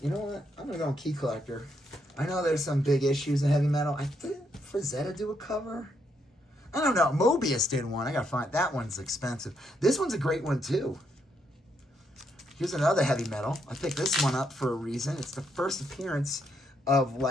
you know what? I'm gonna go on Key Collector. I know there's some big issues in heavy metal. I think Frazetta do a cover. I don't know. Mobius did one. I gotta find that one's expensive. This one's a great one too. Here's another heavy metal. I picked this one up for a reason. It's the first appearance of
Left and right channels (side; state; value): both; normal; correlation 0.77